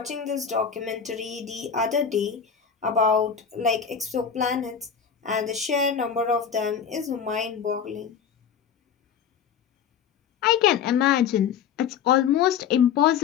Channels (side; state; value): right; quieter; 7.4 dB